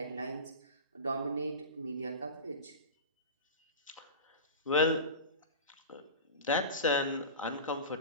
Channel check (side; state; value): both; inverted; correlation -0.30